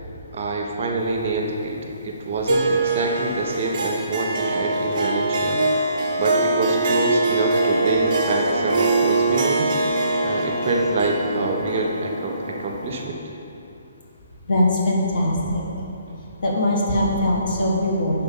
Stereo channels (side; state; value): both; inverted; correlation -0.67